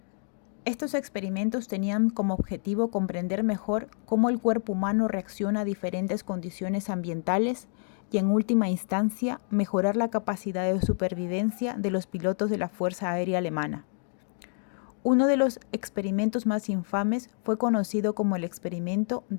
Estos experimentos tenían como objetivo comprender mejor cómo el cuerpo humano reacciona a diferentes condiciones ambientales y, en última instancia, mejorar la capacidad de supervivencia de los pilotos de la Fuerza Aérea Alemana. Uno de los experimentos más infames fue conocido como el experimento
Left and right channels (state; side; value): silent; right; 59 dB below the other